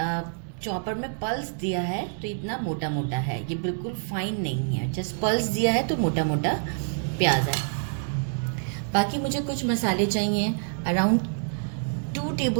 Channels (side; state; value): left; silent; digital silence